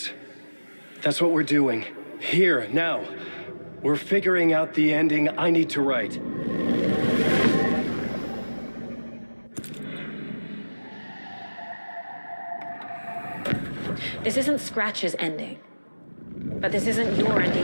That's what we're doing. Here, now. We're figuring out the ending I need to write. This isn't Scratch's ending. But this isn't your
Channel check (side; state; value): both; inverted; correlation -1.00